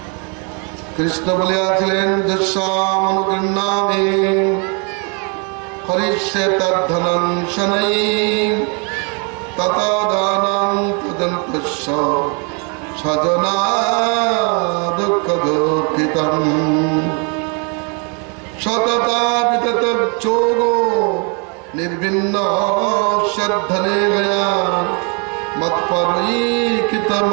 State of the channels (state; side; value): quieter; left; 35.7 dB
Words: কৃষ্ণ বলিয়াছিলেন, যস্যামনুগৃহ্ণামি হরিষ্যে তদ্ধনং শনৈ ততো দানং তদন্তস্য স্বজনা দুঃখ দুঃখিতং সততা বিতত যোগো নির্বিন্ন শ্রদ্ধনে গয়া মৎপরৈকিত